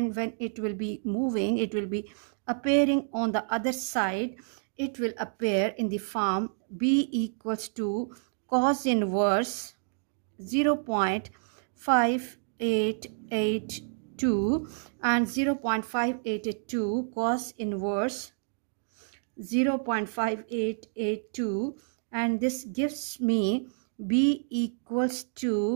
when it will be moving, it will be appearing on the other side. It will appear in the form B equals to cos inverse 0.5882 and 0.5882 cos inverse 0.5882, and this gives me B equals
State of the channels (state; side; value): silent; left; digital silence